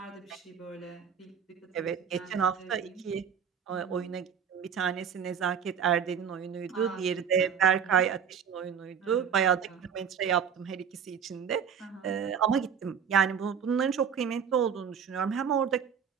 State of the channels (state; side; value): quieter; left; 7.4 dB